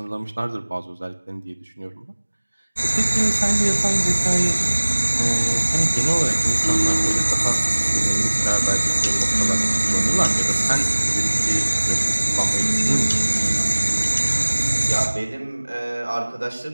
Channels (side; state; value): both; inverted; correlation -1.00